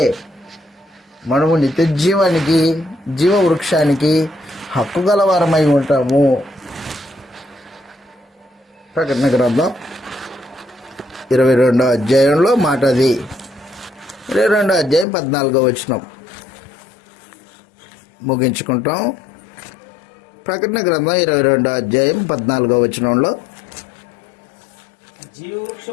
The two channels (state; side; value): drops out; right; at 15.1 s